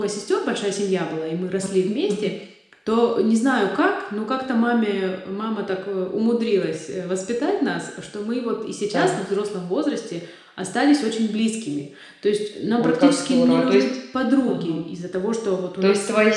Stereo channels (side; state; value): both; identical; correlation 1.00